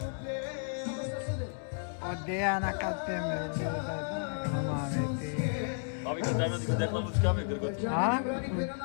Odeya na kapene. Abi kaçamıyor diyor dekla muzika mı gırgıt? Ha?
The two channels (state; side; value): silent; right; digital silence